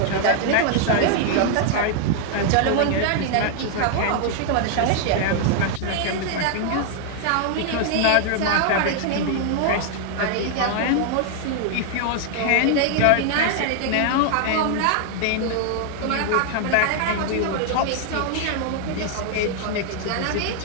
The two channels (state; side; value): different; both; correlation 0.00